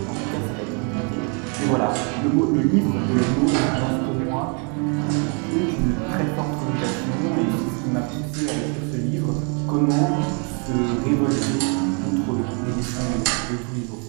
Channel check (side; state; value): left; quieter; 37.1 dB